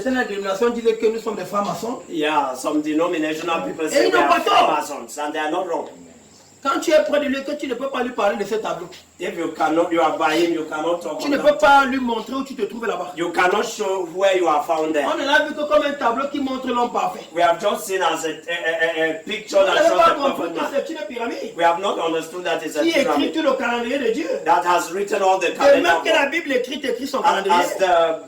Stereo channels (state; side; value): identical; both; correlation 1.00